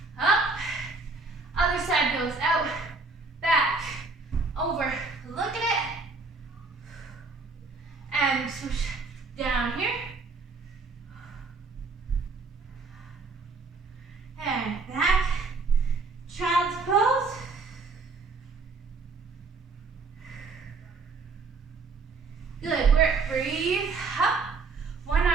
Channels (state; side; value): quieter; left; 4.0 dB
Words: Up. Other side goes out, back, over. Look at it. And swoosh down here. And back. Child's pose. Good work. Breathe up. One